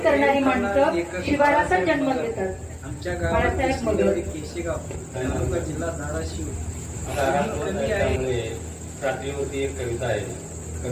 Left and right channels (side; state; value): both; identical; correlation 1.00